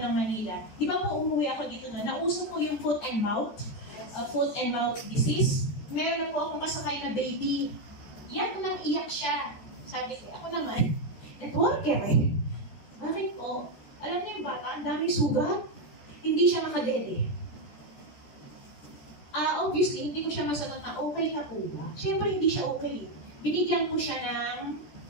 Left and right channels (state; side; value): late; right; 14 ms